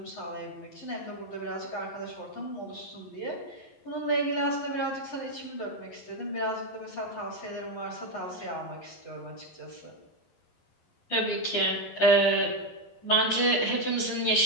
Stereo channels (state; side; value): late; right; 11 ms